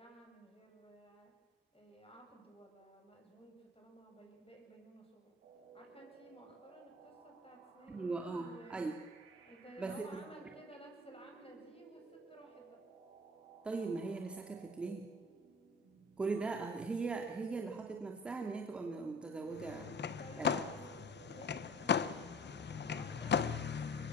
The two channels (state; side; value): normal; both; correlation 0.43